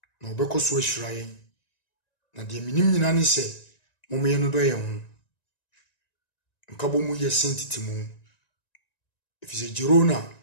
na obekoso ahirayen na de minim nyina ne se momye no do ye ho nkabo mu ye sentitimu ifise jerona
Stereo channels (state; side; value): late; right; 1.9 ms